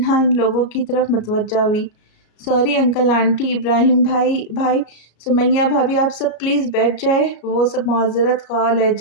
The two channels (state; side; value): late; right; 33 ms